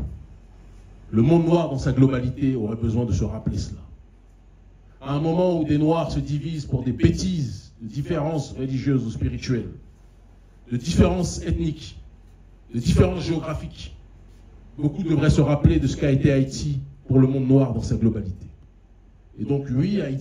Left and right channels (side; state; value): both; identical; correlation 1.00